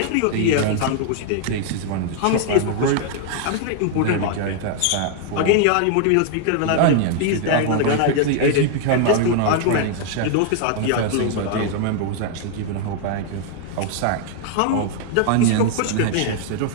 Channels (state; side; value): different; both; correlation 0.00